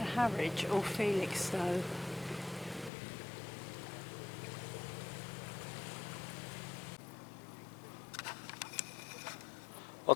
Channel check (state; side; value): drops out; right; at 2.9 s